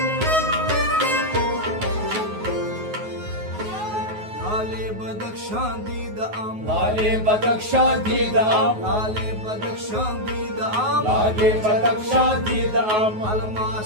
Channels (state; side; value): late; left; 9.4 ms